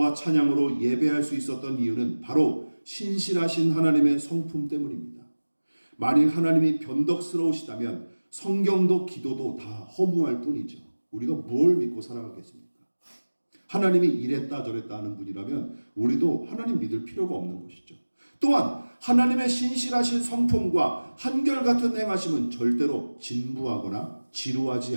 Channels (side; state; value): both; inverted; correlation -1.00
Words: 찬양으로 예배할 수 있었던 이유는 바로 신실하신 하나님의 성품 때문입니다. 만일 하나님이 변덕스러우시다면 성경도 기도도 다 허무할 뿐이죠. 우리가 뭘 믿고 살아가겠습니까? 하나님이 이랬다 저랬다 하는 분이라면 우리도 하나님 믿을 필요가 없는 것이죠. 또한 하나님의 신실하신 성품과 한결같은 행하심은 절대로 진부하거나 지루하지